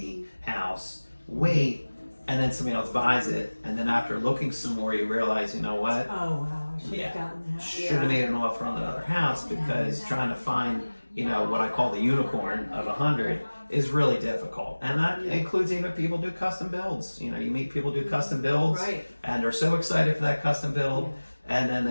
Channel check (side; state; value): both; inverted; correlation -1.00